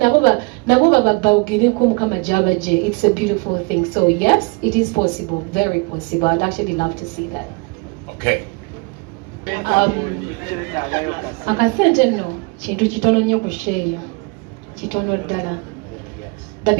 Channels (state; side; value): quieter; left; 29.3 dB